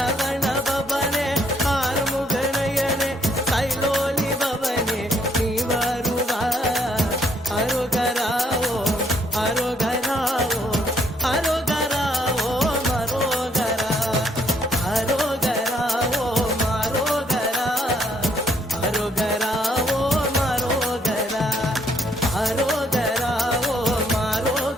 பவனே ஆறுமுகநயனே கைலோலி பவனே நீ வருவா அரோகராவோ அரோகராவோ அரோகராவோ மரோகரா அரோகராவோ மரோகரா அரோகராவோ மரோகரா அரோகராவோ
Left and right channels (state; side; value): normal; both; correlation 0.69